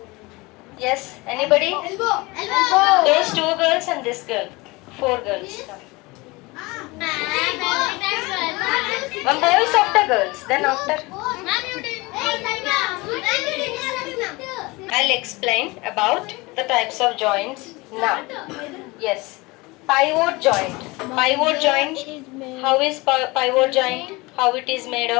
Yes, anybody? Elbow. Those two girls and this girl. 4 girls. One boy is after girls. Then after, I'll explain about the types of joints now. Yes. Pivot joint. Pivot joint. How is pivot joint? How it is made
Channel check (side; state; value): right; quieter; 23.6 dB